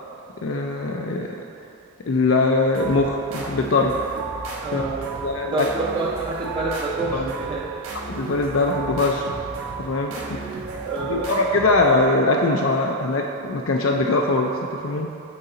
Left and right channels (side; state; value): both; normal; correlation 0.03